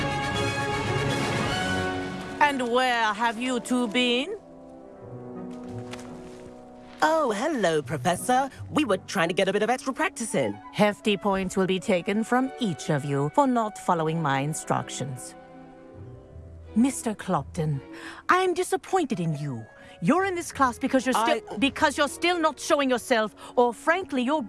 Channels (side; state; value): both; identical; correlation 1.00